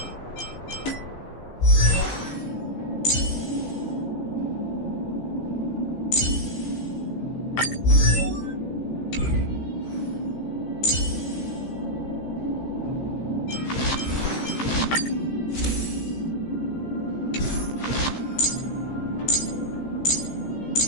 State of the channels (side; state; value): right; late; 15 ms